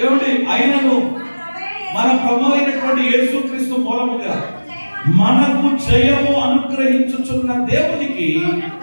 ఏమండి, అయినను మన ప్రభు అయినటువంటి యేసుక్రీస్తు మూలముగా మనకు జయము అనుగ్రహించుచున్న దేవునికి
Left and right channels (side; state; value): both; inverted; correlation -1.00